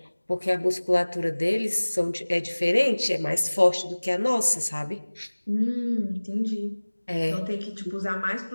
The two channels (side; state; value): both; inverted; correlation -1.00